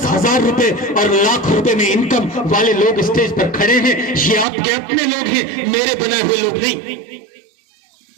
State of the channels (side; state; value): left; drops out; at 4.5 s